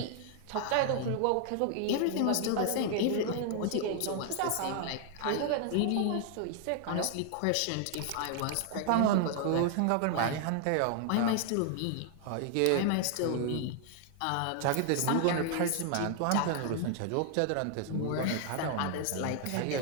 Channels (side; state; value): both; different; correlation 0.00